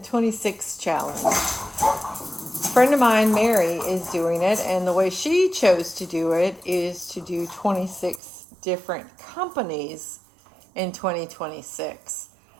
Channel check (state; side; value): drops out; left; at 8.2 s